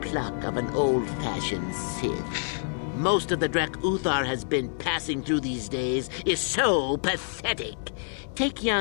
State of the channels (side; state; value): right; silent; digital silence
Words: pluck of an old-fashioned Sith. Most of the Drek Uthar has been passing through these days is so pathetic. Take